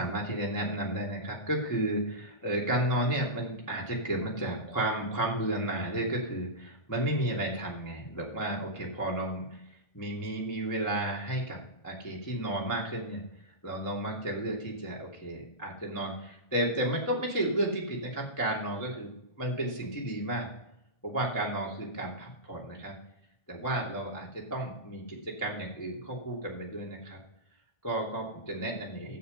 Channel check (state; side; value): late; right; 1.5 ms